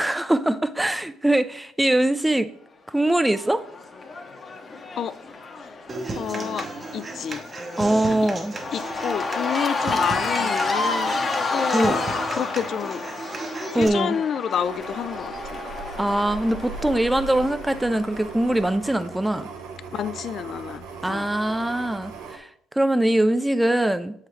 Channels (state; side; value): normal; both; correlation 0.89